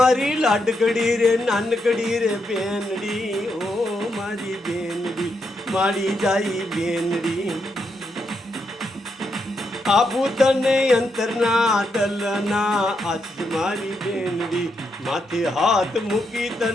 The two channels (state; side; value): normal; both; correlation 0.81